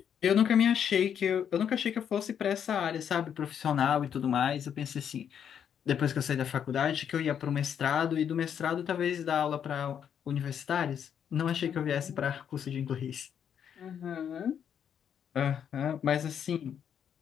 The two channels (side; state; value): right; quieter; 8.4 dB